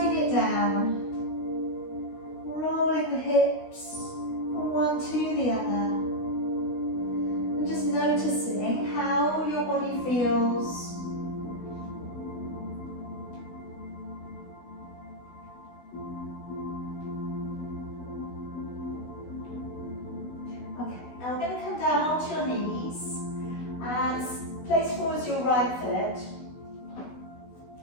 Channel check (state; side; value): late; right; 16 ms